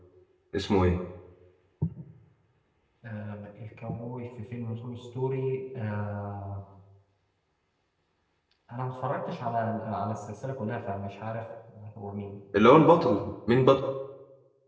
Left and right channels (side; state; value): both; identical; correlation 1.00